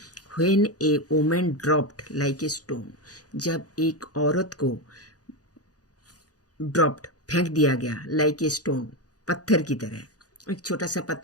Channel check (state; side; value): late; right; 0.67 ms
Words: When A woman dropped like a stone, जब एक औरत को ड्रॉप्ड फेंक दिया गया, लाइक ए स्टोन पत्थर की तरह। एक छोटा सा